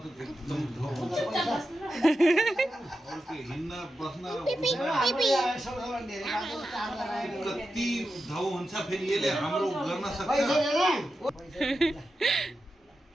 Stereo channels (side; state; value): both; normal; correlation 0.90